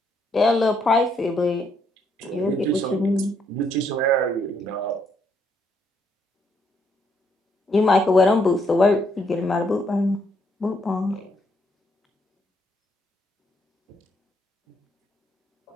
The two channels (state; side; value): normal; both; correlation 0.73